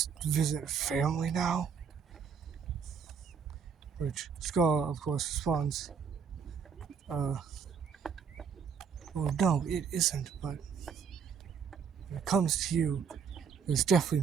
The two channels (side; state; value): left; quieter; 6.5 dB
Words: visit family now? Which Scar, of course, responds, well, no, it isn't, but when it comes to you, there's